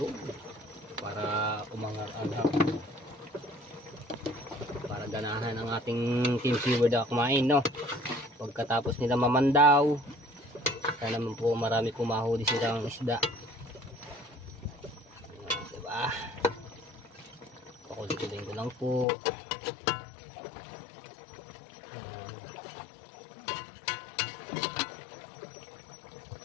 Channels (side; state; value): right; drops out; at 19.1 s